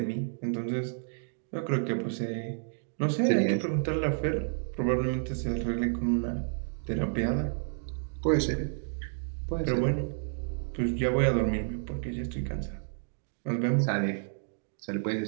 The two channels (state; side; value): silent; left; digital silence